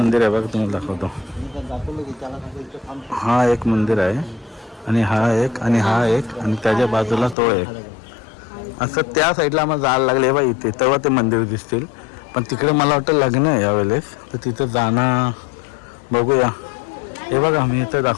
आहे बघा, तुम्हाला दाखवतो. हा एक मंदिर आहे आणि हा एक आणि हा एक आणि त्याच्या बाजूला तो एक. असं त्या साईडला आम्हाला जायला लागले बा इथे, तेव्हा ते मंदिर दिसतील. पण तिकडे मला वाटतं लग्न आहे यावेळेस, तर तिथं जाणं बघूया. हे बघा मी इथं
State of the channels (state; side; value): drops out; right; at 7.4 s